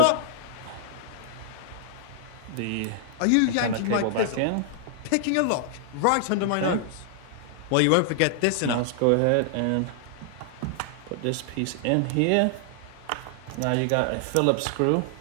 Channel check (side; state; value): both; different; correlation -0.01